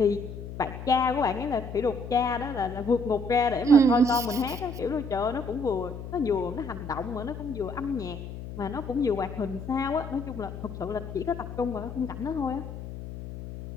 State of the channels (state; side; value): noise; left; hum, 10 dB below the sound